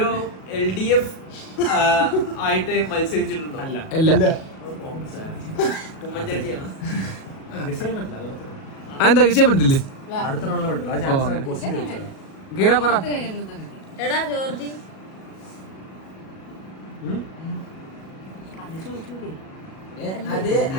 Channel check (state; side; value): late; right; 37 ms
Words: LDF ആയിട്ട് മത്സരിച്ചിട്ടുണ്ടോ? അല്ല. ഇല്ല. ഉമ്മൻചാണ്ടിയാണ്. ഗസ് ചെയ്യാൻ പറ്റില്ല, അത് അത്ര. അതെന്താ ചെയ്യാൻ പറ്റത്തില്ലേ? അടുത്ത റൗണ്ടിൽ പറ്റില്ല. ആ ചാൻസ് ക്വസ്റ്റ്യൻ ചോദിച്ചത്. ഗീര പറ. എടാ ജോർജി അത്